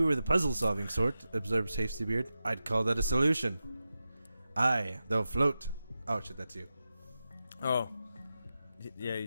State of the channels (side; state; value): both; inverted; correlation -0.91